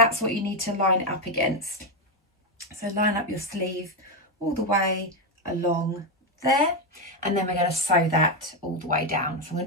what you need to line it up against. So line up your sleeve all the way along there, and then we're going to sew that all the way down. So I'm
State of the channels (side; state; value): both; normal; correlation 0.06